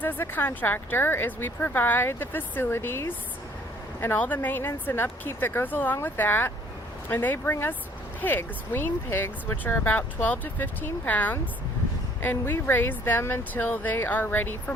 as a contractor is we provide the facilities and all the maintenance and upkeep that goes along with that, and they bring us pigs, wean pigs, which are about 12 to 15 pounds, and we raise them until they are ready for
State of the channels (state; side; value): normal; both; correlation 0.59